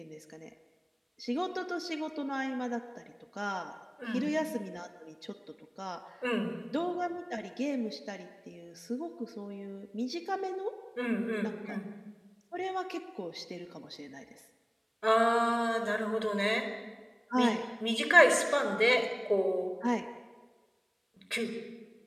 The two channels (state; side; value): identical; both; correlation 1.00